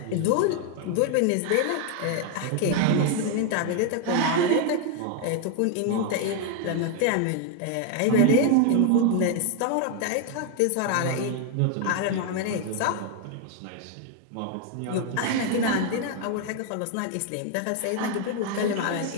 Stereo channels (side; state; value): both; different; correlation 0.01